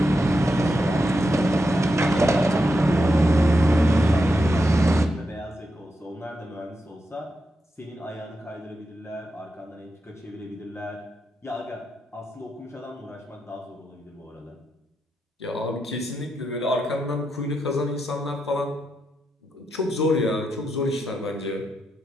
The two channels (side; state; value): both; normal; correlation 0.85